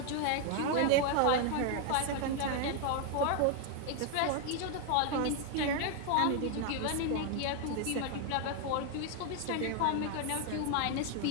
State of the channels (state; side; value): different; both; correlation 0.01